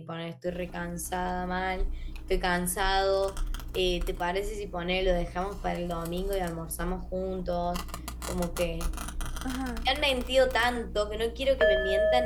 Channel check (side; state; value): both; identical; correlation 1.00